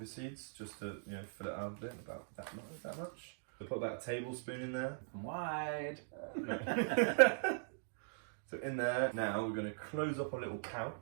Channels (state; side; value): silent; left; digital silence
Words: seeds, just to, fill it out a bit, about that much. So put about a tablespoon in there. Wide. So in there, now we're going to close up our little